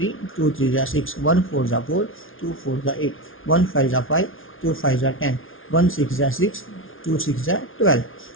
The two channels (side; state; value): right; late; 0.58 ms